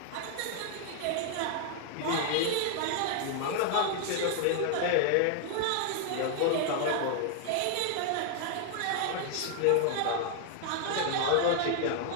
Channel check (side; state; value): both; different; correlation 0.00